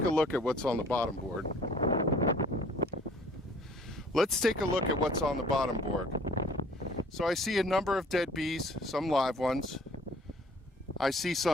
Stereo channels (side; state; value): both; normal; correlation 0.53